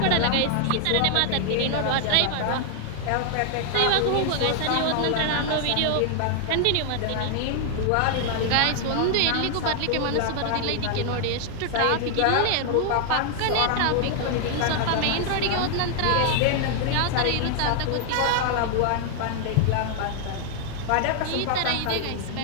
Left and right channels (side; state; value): both; different; correlation 0.00